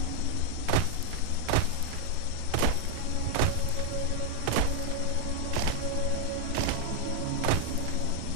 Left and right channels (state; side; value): different; both; correlation 0.00